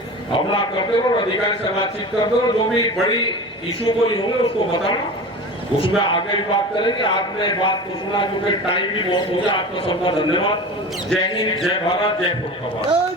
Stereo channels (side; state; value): both; normal; correlation 0.33